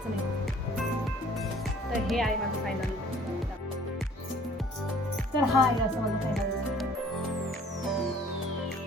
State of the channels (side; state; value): both; normal; correlation 0.53